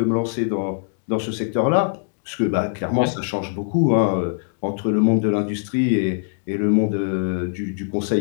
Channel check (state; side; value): silent; right; digital silence